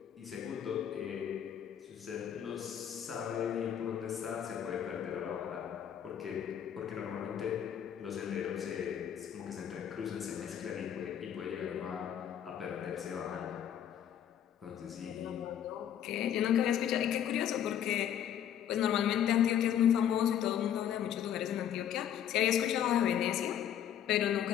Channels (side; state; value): right; quieter; 9.8 dB